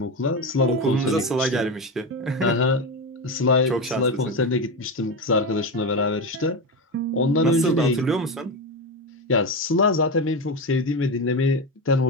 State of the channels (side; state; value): both; normal; correlation 0.17